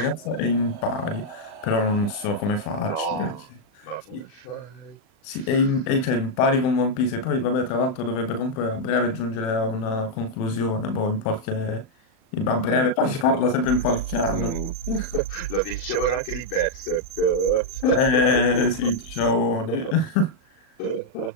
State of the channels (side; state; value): right; late; 36 ms